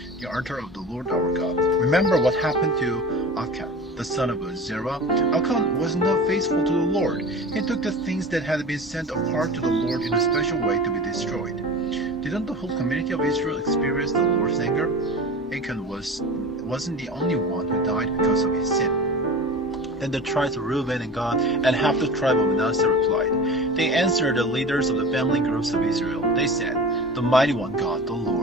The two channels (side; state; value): both; normal; correlation 0.35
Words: the altar of the Lord our God. Remember what happened to Achan, the son of Zerah. Achan was not faithful to the Lord. He took the things that had been set apart to the Lord in a special way to be destroyed. Didn't the whole community of Israel experience the Lord's anger? Achan wasn't the only one who died because of his sin. Then the tribes of Reuben and Gad and half the tribe of Manasseh replied. They answered the leaders of the family groups of Israel. They said, "The mighty one God, the